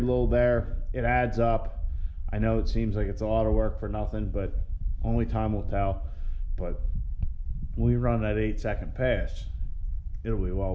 little there, it adds up. I know it seems like it's a lot of work for nothing, but only time will tell. But when we run that 8-second pass, it'll be well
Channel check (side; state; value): both; identical; correlation 1.00